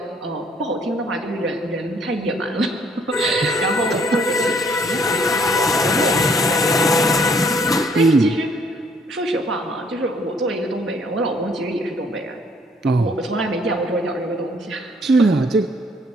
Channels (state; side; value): normal; both; correlation 0.63